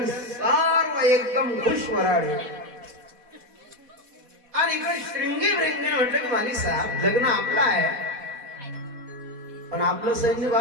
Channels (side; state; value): left; late; 4.1 ms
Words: सर्व एकदम खुश वराडे. आणि इकडे श्रृंगी वृंगी म्हटलं की माली साहेब लग्न आपलं आहे, पण आपलं सैन्य